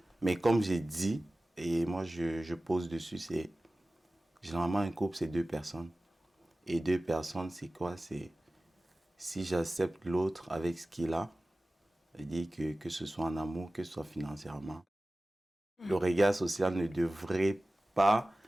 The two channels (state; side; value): normal; both; correlation 0.97